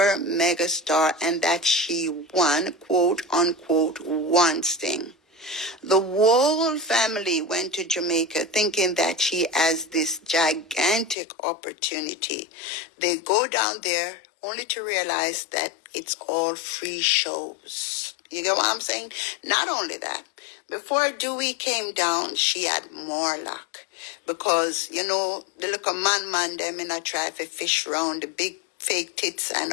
mega star and that she won, quote unquote, one thing. The whole family went to Jamaica thinking that she has this gigantic opportunity. They go down there only to realize that it's all free shows. You get what I'm saying? Not only that, before Dewey came down, she had more luck. Because, you know, the little man them in a try to fish round the big fake tits and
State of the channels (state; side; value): drops out; right; at 11.2 s